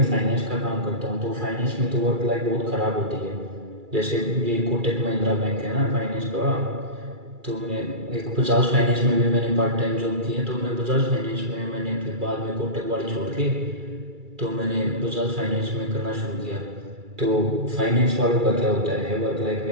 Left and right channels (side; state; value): left; late; 2.3 ms